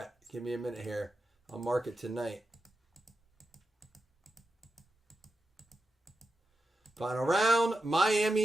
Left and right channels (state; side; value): normal; both; correlation 0.89